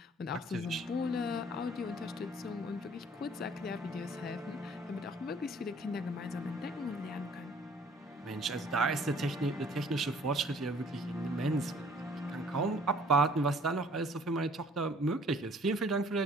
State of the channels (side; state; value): both; normal; correlation 0.56